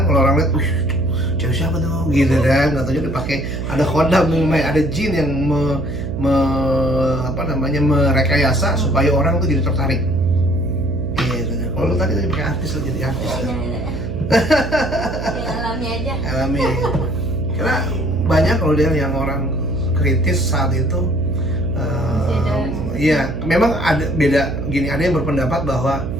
kalau orang lihat, cewek siapa tuh gitu kan, nggak tahu dia pakai ada khodam, ada jin yang merekayasa supaya orang tuh jadi tertarik. Gitu. Kalau lu tadi pakai artis, lu jadi artis. Ya, alami aja. Alami. Karena banyak kalau dia yang orang kritis saat itu. Iya, memang ada beda gini, ada yang berpendapat bahwa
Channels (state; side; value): noise; right; hum, 6 dB below the sound